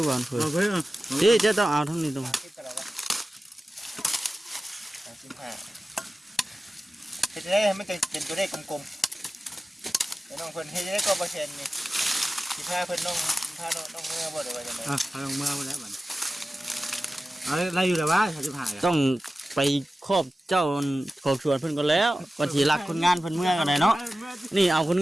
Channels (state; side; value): normal; both; correlation 0.95